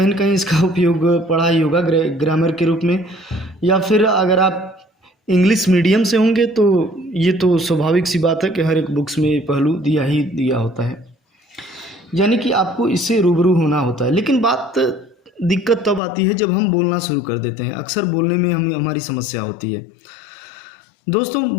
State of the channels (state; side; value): drops out; right; at 16.0 s